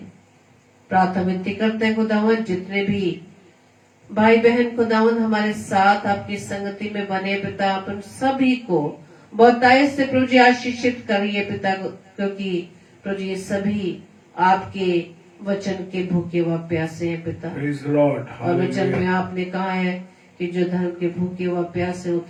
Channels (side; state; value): both; identical; correlation 1.00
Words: प्रार्थना विनती करते हैं खुदावंद, जितने भी भाई बहन खुदावंद हमारे साथ आपकी संगति में बने पिता, आप उन सभी को बहुतायत से प्रभु जी आशीषित करिए पिता, क्योंकि प्रभु जी ये सभी आपके वचन के भूखे व प्यासे हैं पिता। और वचन में आपने कहा है कि जो धर्म के भूखे व प्यासे